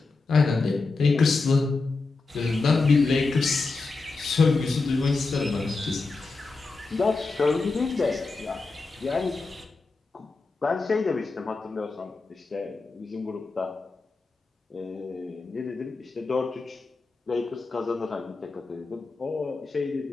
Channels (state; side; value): quieter; right; 3.8 dB